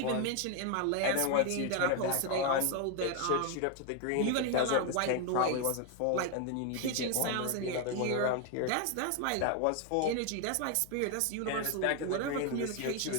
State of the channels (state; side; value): different; both; correlation 0.01